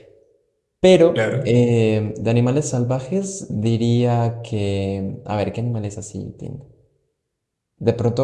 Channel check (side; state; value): both; identical; correlation 1.00